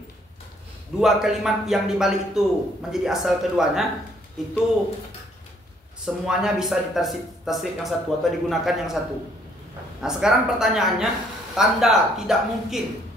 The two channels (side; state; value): both; normal; correlation 0.65